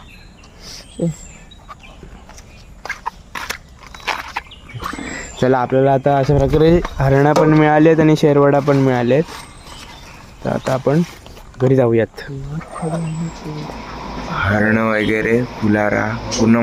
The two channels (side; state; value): both; identical; correlation 1.00